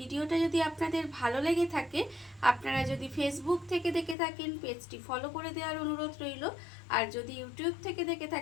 যদি আপনাদের ভালো লেগে থাকে, আপনারা যদি ফেসবুক থেকে দেখে থাকেন পেজটি ফলো করে দেওয়ার অনুরোধ রইল, আর যদি ইউটিউব থেকে দেখে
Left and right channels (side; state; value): right; drops out; at 4.2 s